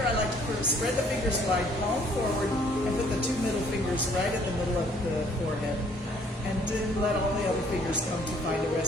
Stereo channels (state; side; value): normal; both; correlation 0.61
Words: I like to spread the fingers wide, palm forward, and put the two middle fingers right at the middle of the forehead. And then let all the other fingers come to find a